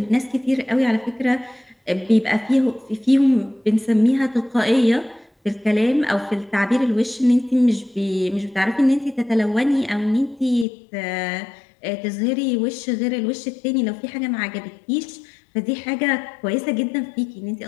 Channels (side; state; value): right; drops out; at 10.7 s